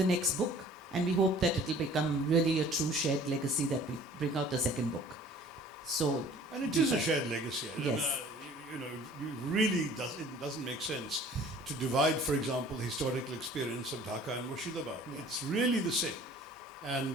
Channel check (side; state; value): both; normal; correlation 0.50